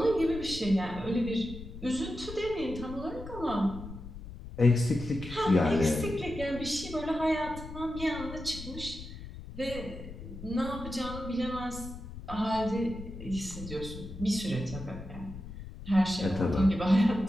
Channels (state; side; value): noise; left; rumble, 12 dB below the sound